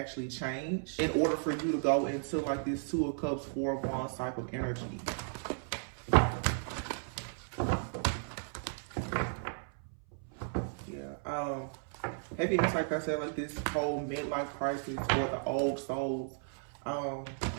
change in order for you to go into like this 2 of Cups, 4 of Wands type of energy. Yeah. Heavy, like I said, like this whole midlife crisis for the old souls.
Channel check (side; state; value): left; silent; 55 dB below the other